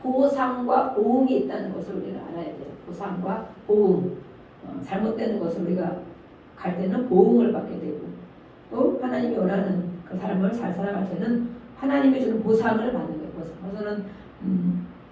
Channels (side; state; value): both; identical; correlation 1.00